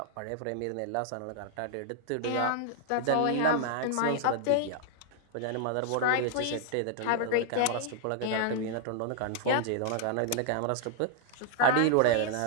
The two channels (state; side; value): different; both; correlation 0.00